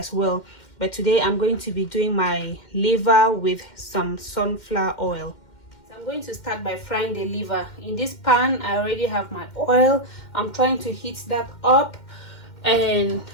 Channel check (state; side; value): late; right; 2.1 ms